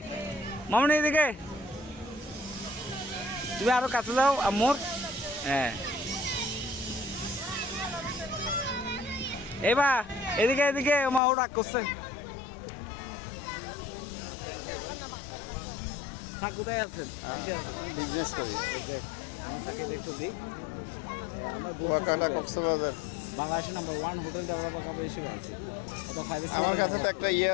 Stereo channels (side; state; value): right; drops out; at 11.2 s